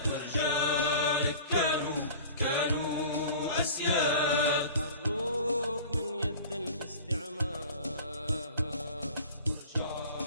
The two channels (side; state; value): both; inverted; correlation -0.40